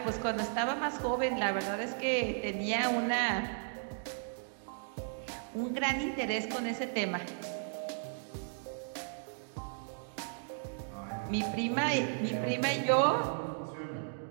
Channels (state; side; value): silent; left; digital silence